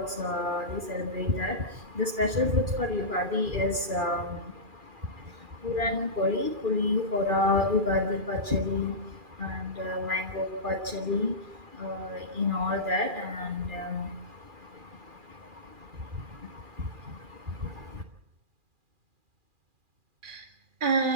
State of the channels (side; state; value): left; late; 2.4 ms